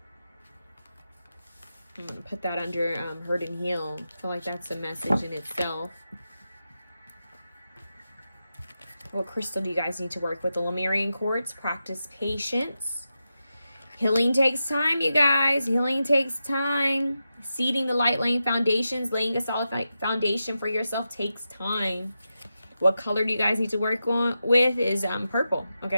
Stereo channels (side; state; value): both; inverted; correlation -0.90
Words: I'm going to put that under Hurt and Heal. I feel like that's a message in itself. What crystal do you guys need to work with? The Lemurian quartz. Practice patience. Healing takes time, you guys. Healing takes time. Seeding the light, laying foundations. Laying a solid foundation for yourself takes time. What color do you guys need to work with is purple.